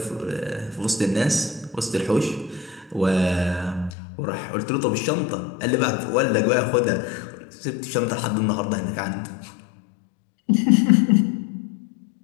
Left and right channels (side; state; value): right; drops out; at 4.0 s